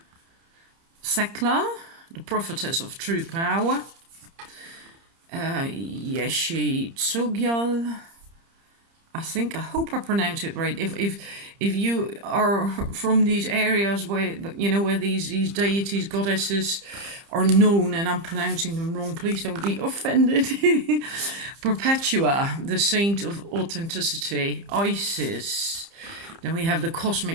Thekla, the prophetess of true power. Yeshi Tsogyal. I hope I pronounce it right. If you are from these areas where, you know, where these deities, goddesses are known and I'm pronouncing them wrong, please don't be offended. Perpetua, the saint of authenticity. Isis, Then we have the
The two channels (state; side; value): late; left; 30 ms